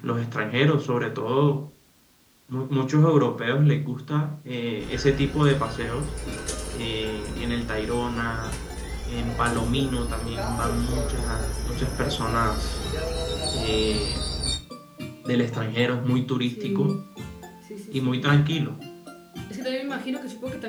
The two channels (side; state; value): both; identical; correlation 1.00